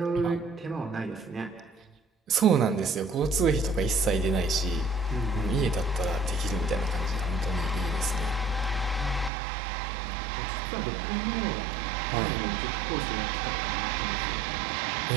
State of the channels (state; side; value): drops out; left; at 9.3 s